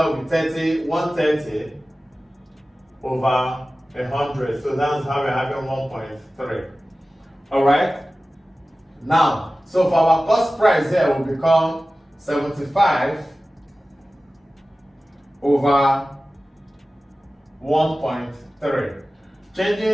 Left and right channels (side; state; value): both; normal; correlation 0.96